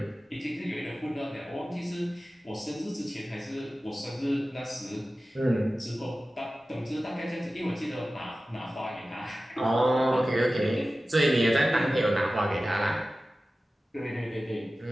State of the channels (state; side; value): normal; both; correlation 0.95